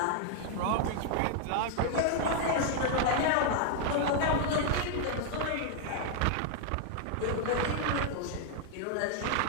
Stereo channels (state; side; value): different; both; correlation 0.00